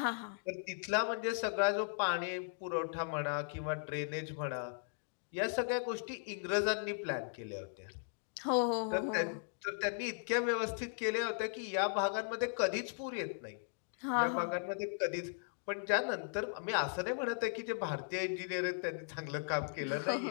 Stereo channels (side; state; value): right; silent; digital silence